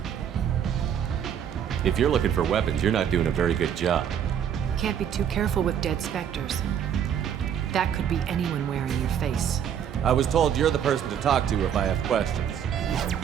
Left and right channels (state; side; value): quieter; left; 8.8 dB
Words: If you're looking for weapons, you're not doing a very good job. Can't be too careful with dead specters. That could be anyone wearing your face. I was told you're the person to talk to if I have questions.